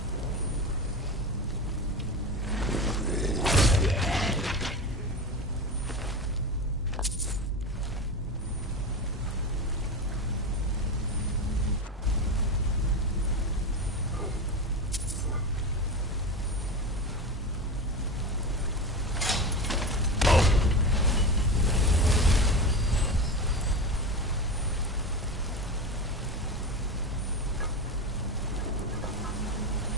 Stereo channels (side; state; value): both; normal; correlation 0.22